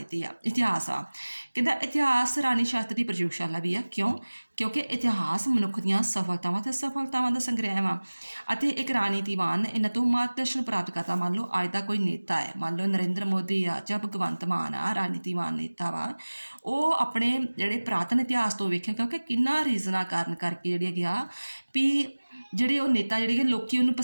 ਆ, ਇਤਿਹਾਸ ਆ, ਕਹਿੰਦਾ ਇਤਿਹਾਸ ਰਾਣੀ ਸ਼ਾਸਤਰ ਦੀ ਪ੍ਰਯੋਗਸ਼ਾਲਾ ਵੀ ਆ। ਕਿਉਂਕਿ ਇਤਿਹਾਸ ਮਨੁੱਖ ਦੀਆਂ ਸਫਲਤਾਵਾਂ ਅਤੇ ਅਸਫਲਤਾਵਾਂ ਦਾ ਸੰਗ੍ਰਹਿ ਵਾ, ਅਤੇ ਇੱਕ ਰਾਜਨੀਤੀਵਾਨ ਇਹਨਾਂ ਤੋਂ ਮਾਰਗਦਰਸ਼ਨ ਪ੍ਰਾਪਤ ਕਰਦਾ। ਮੰਨ ਲਓ ਅੱਜ ਦਾ ਕੋਈ ਨੇਤਾ ਹੈ, ਮੰਨ ਲਓ ਨਰਿੰਦਰ ਮੋਦੀ ਆ ਜਾਂ ਭਗਵੰਤ ਮਾਨ ਆ, ਰਾਜਨੀਤੀਵਾਨ ਨੇਤਾ ਵਾ, ਉਹ ਆਪਣੇ ਜਿਹੜੇ ਪੁਰਾਤਨ ਇਤਿਹਾਸ ਤੋਂ ਵੇਖੇਗਾ ਕਿ ਕਿੰਨਾ ਰੀਜ਼ਨਾਂ ਕਾਰਨ ਕਰਕੇ ਜਿਹੜੀ ਹੈਗੀ ਆ ਵੀ ਜਿਹੜੇ ਉਹ ਨੇਤਾ ਜਿਹੜੇ ਕਿ ਲੋਕ ਉਹਨੂੰ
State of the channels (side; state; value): both; inverted; correlation -1.00